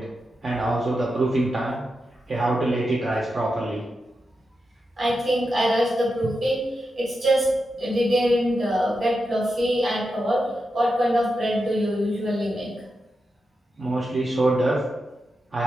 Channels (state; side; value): normal; both; correlation 0.88